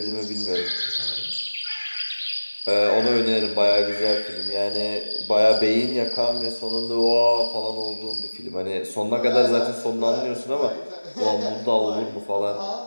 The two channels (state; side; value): inverted; both; correlation -1.00